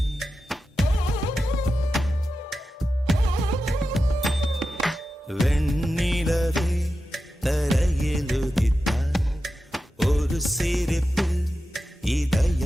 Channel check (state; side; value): normal; both; correlation 0.91